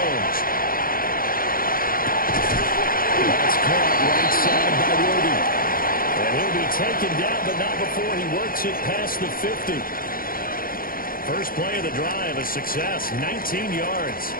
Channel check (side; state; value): right; late; 0.42 ms